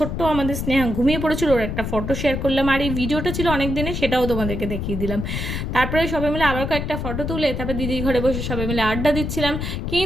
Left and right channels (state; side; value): noise; left; rumble, 3 dB below the sound